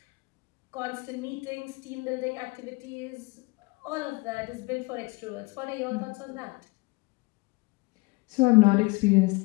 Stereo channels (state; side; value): quieter; right; 25.4 dB